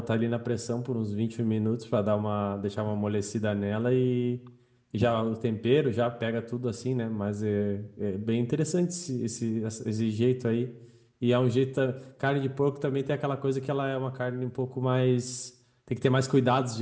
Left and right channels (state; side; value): identical; both; correlation 1.00